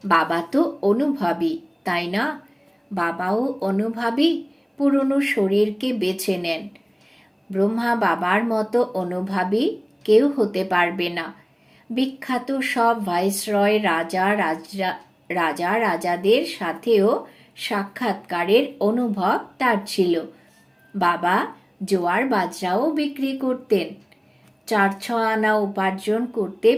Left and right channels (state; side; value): identical; both; correlation 1.00